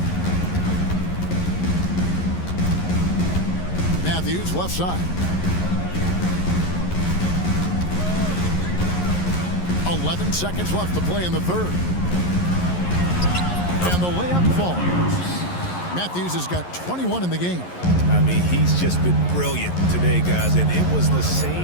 Matthews left side. 11 seconds left to play in the 3rd. And the layup falls. Matthews has got 21 in the game. I mean, he's just been brilliant today, guys, and it was the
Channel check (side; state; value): right; late; 11 ms